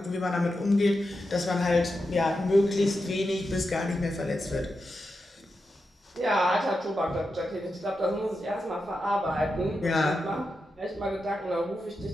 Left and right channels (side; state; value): both; normal; correlation 0.88